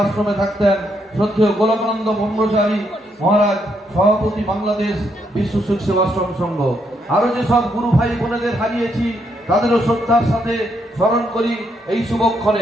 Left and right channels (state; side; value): normal; both; correlation 0.76